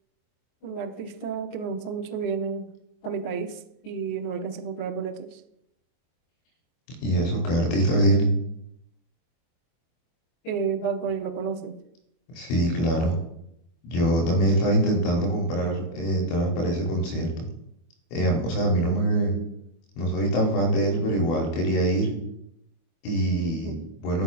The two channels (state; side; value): late; right; 24 ms